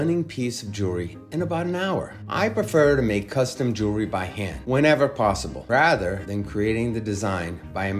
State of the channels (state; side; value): identical; both; correlation 1.00